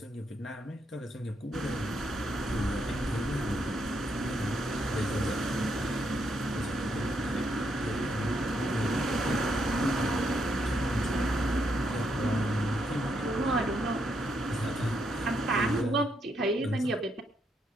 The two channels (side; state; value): both; normal; correlation 0.78